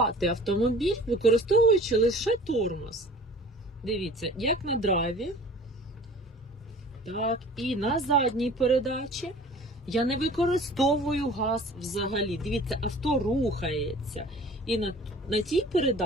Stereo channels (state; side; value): normal; both; correlation 0.46